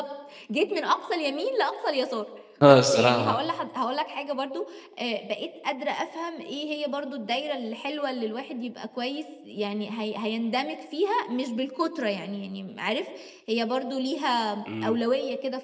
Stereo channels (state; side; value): identical; both; correlation 1.00